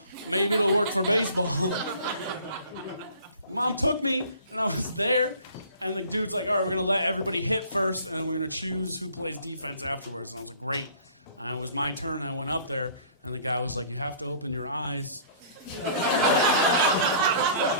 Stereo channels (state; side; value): inverted; both; correlation -0.51